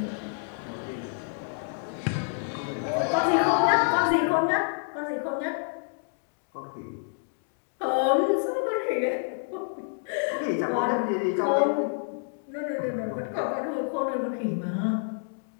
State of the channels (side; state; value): right; silent; digital silence